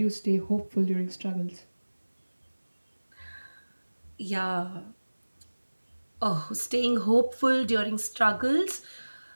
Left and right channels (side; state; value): both; inverted; correlation -1.00